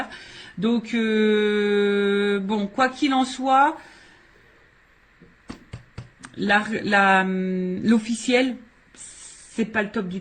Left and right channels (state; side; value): identical; both; correlation 1.00